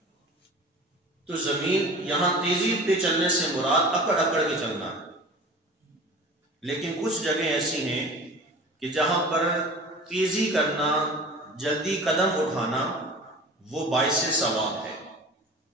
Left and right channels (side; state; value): both; normal; correlation 0.39